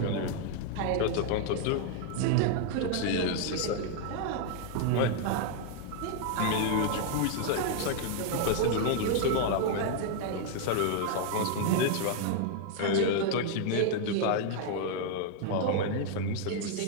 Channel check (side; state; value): both; different; correlation 0.00